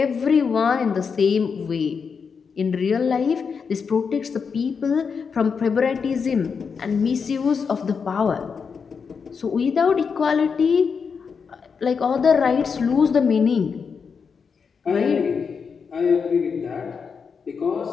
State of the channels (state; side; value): quieter; right; 5.9 dB